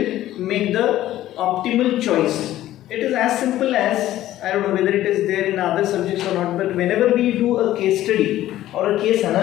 make the optimal choice. It is as simple as, I don't know whether it is there in other subjects or not, but whenever we do a case study or a case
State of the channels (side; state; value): right; quieter; 14.0 dB